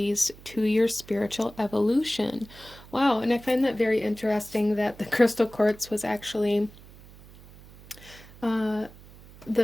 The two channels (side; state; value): right; noise; hum, 21 dB below the sound